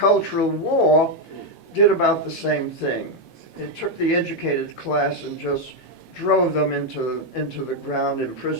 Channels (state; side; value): normal; both; correlation 0.02